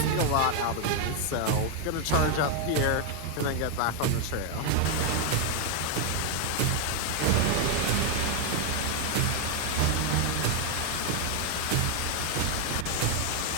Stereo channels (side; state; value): both; different; correlation 0.01